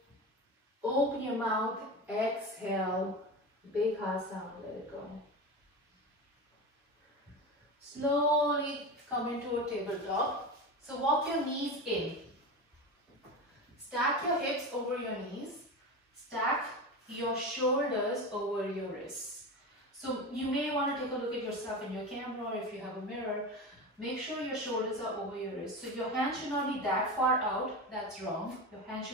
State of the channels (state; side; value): normal; both; correlation 0.25